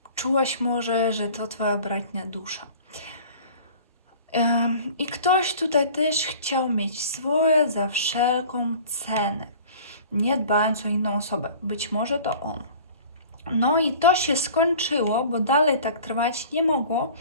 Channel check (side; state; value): both; inverted; correlation -0.45